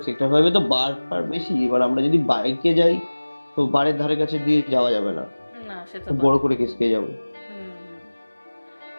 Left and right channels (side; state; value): both; inverted; correlation -1.00